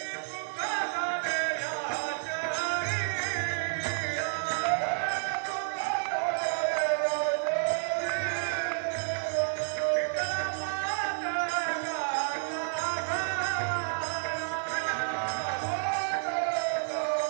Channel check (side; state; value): left; silent; digital silence